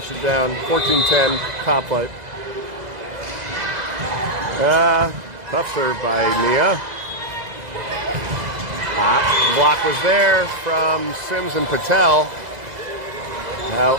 it down. 14-10, top flight. Tough serve by Nia. Block was there from Sims and Patel.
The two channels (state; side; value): late; left; 2.0 ms